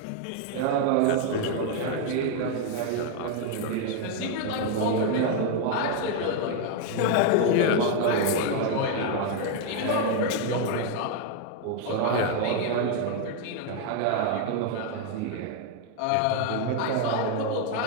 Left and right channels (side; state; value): both; different; correlation 0.00